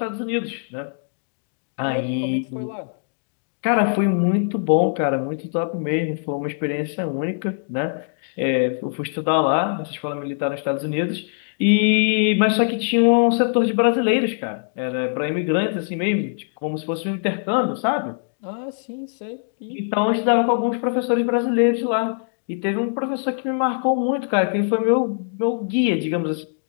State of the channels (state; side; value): silent; right; digital silence